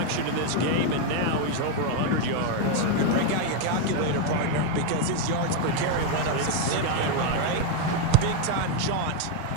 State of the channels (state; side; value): different; both; correlation 0.01